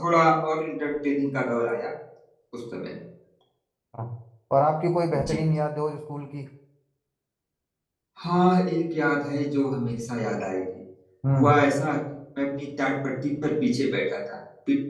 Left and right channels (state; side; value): identical; both; correlation 1.00